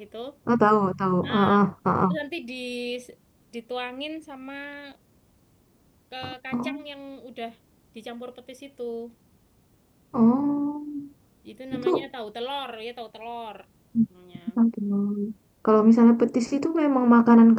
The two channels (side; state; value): both; identical; correlation 1.00